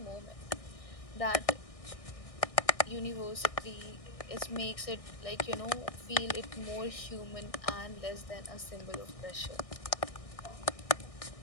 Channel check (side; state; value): right; late; 1.6 ms